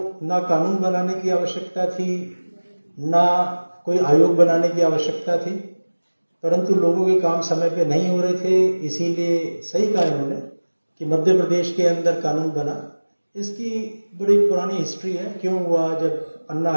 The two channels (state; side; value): inverted; both; correlation -1.00